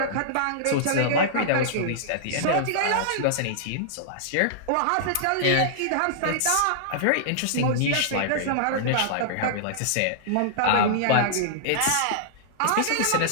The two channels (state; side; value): different; both; correlation -0.02